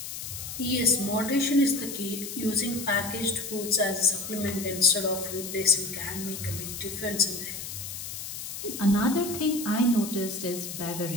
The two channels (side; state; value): left; noise; hiss, 8 dB below the sound